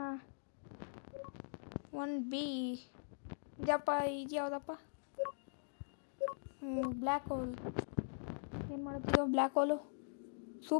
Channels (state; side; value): silent; right; digital silence